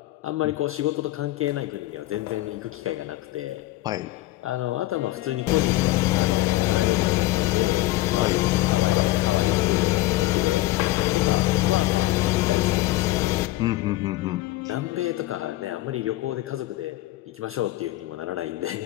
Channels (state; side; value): quieter; right; 17.2 dB